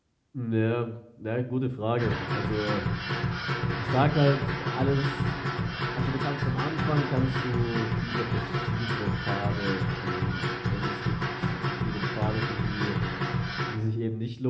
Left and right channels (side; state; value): both; identical; correlation 1.00